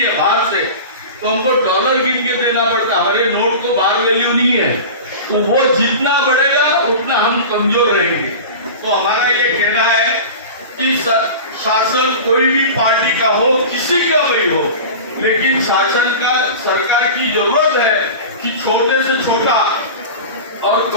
बाहर से तो हमको डॉलर गिन के देना पड़ता। हमारे नोट को बाहर वैल्यू नहीं है, तो वो जितना बढ़ेगा उतना हम कमजोर रहेंगे। तो हमारा ये कहना है कि शासन कोई भी पार्टी का हो, किसी का भी हो, लेकिन शासन का, सरकार की जरूरत है कि छोटे से छोटा और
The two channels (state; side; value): inverted; both; correlation -0.32